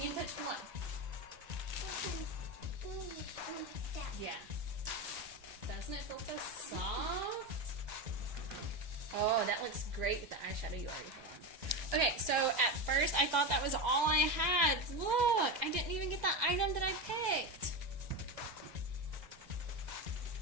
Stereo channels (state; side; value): late; left; 2.0 ms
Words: can touch one. Yeah. Doesn't it feel so soft? Oh, that looks great with the eyeshadow you already have on. Okay, so at first I thought that was all I had. Look, I didn't even get the item that I picked.